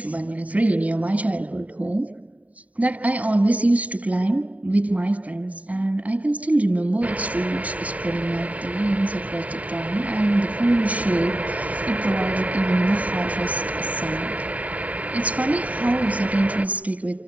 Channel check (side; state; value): left; late; 0.070 ms